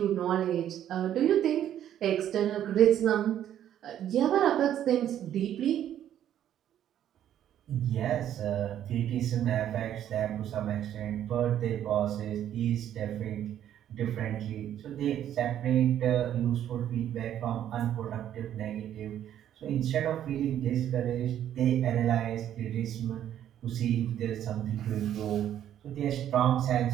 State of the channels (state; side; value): quieter; left; 10.8 dB